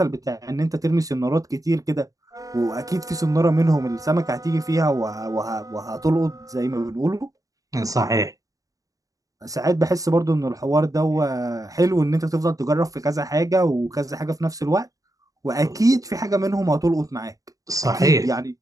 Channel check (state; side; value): late; left; 0.17 ms